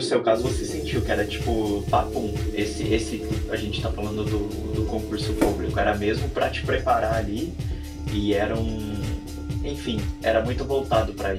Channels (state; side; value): identical; both; correlation 1.00